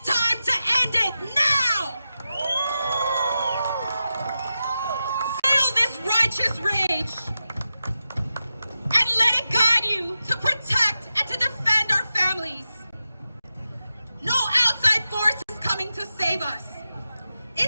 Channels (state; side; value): inverted; both; correlation -0.91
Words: time to end it now. Feel this righteous rage and let it guide you to protect and to defend our families. No outside force is coming to save us.